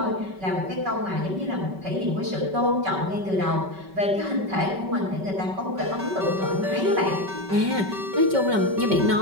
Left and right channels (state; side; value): late; left; 5.2 ms